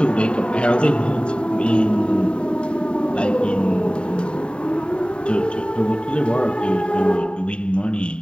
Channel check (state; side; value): late; right; 0.053 ms